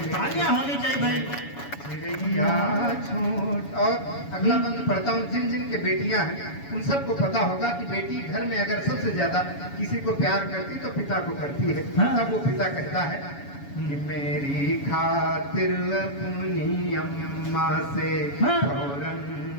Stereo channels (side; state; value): right; late; 7.1 ms